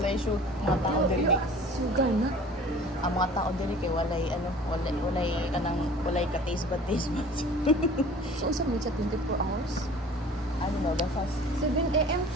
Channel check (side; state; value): both; normal; correlation 0.46